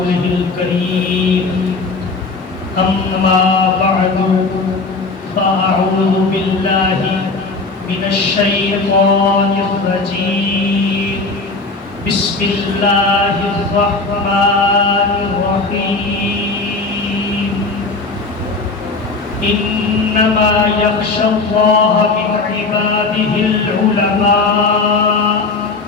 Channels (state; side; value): quieter; right; 3.8 dB